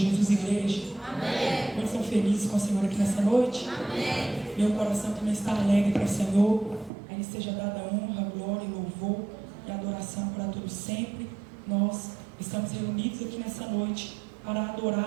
igreja. Amém. Quantos estão felizes com o Senhor aqui nessa noite? Amém. Meu coração também está alegre para o Senhor. A Ele seja dada honra, glória e louvor e adoração para todos sempre. Nós estamos reunidos aqui nessa noite para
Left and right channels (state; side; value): drops out; left; at 6.9 s